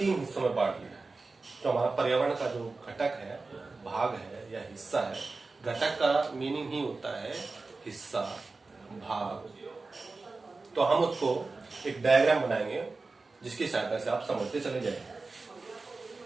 हिस्सों में बांट लिया है। तो हमारा पर्यावरण का जो घटक है, भाग है या हिस्सा है, घटक का मीनिंग ही होता है हिस्सा, भाग। तो हम उसको एक डायग्राम बनाएंगे जिसकी सहायता से आप समझते चले जाएंगे।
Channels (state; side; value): quieter; left; 3.7 dB